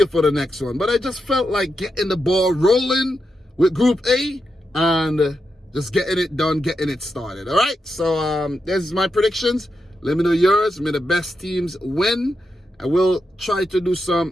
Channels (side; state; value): both; normal; correlation 0.86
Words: for the next one. But I just felt like getting the ball rolling with Group A and just getting it done, getting it started. All right, so there's my predictions. Let me know yours. May the best teams win. I will try to do